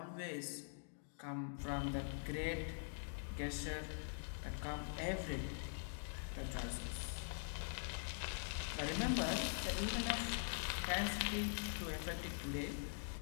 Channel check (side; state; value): right; silent; digital silence